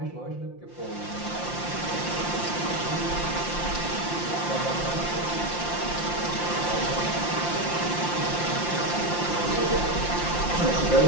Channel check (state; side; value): late; right; 5.7 ms